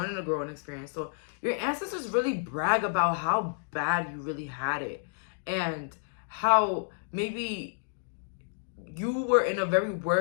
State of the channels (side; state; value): right; silent; digital silence